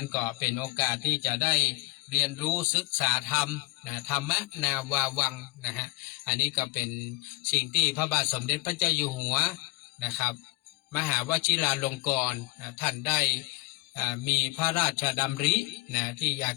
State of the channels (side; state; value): right; quieter; 21.8 dB